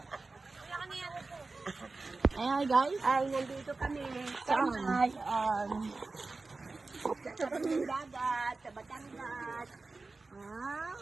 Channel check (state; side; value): quieter; left; 3.6 dB